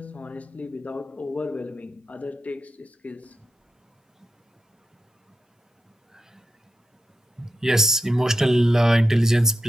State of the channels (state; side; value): normal; both; correlation 0.88